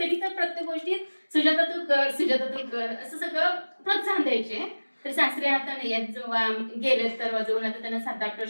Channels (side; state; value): both; inverted; correlation -1.00